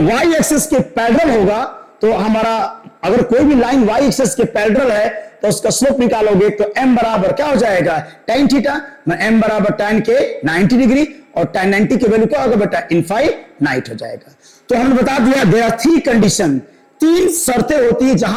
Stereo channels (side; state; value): both; identical; correlation 1.00